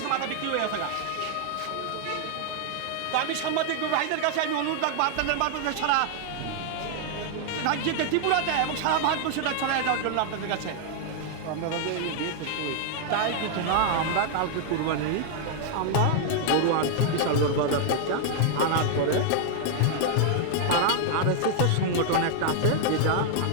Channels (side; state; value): both; different; correlation 0.00